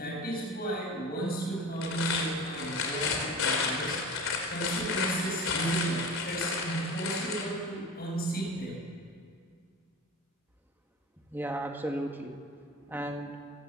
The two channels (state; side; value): normal; both; correlation 0.34